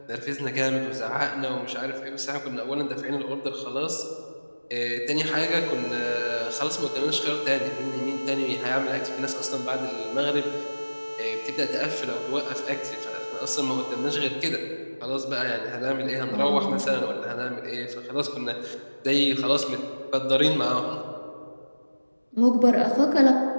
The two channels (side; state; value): both; inverted; correlation -1.00